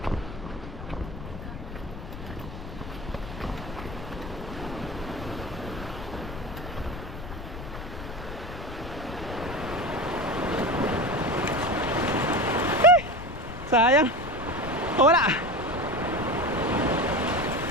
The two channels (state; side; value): noise; left; rumble, 10 dB below the sound